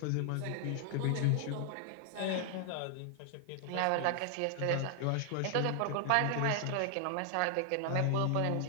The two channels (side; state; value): both; different; correlation 0.00